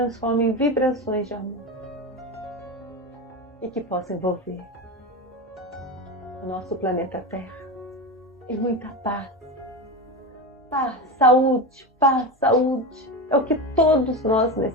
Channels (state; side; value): normal; both; correlation 0.21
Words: em vibrações de amor e que possam envolver o nosso planeta Terra em muita paz. Paz, saúde, paz, saúde. É o que todos nós